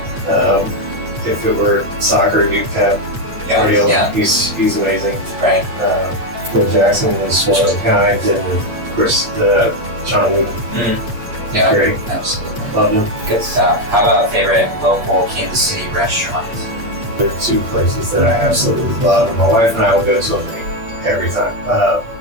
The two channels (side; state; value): left; late; 8.6 ms